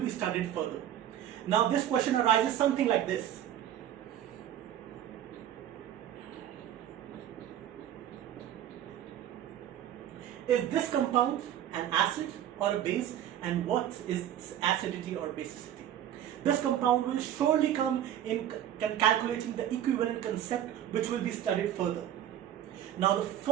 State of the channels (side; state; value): left; quieter; 11.1 dB